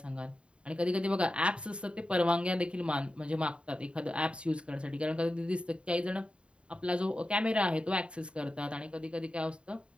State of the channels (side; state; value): left; late; 0.056 ms